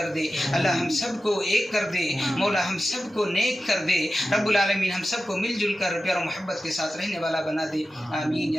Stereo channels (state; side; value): normal; both; correlation 0.93